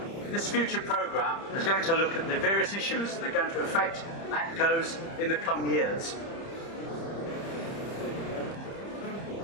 This future programme is going to look at the various issues that are going to affect ATCOs in the coming years.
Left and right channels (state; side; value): late; right; 30 ms